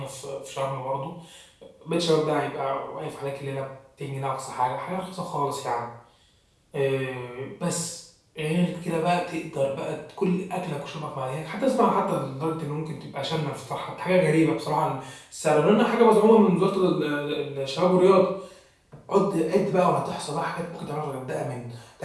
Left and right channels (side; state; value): both; identical; correlation 1.00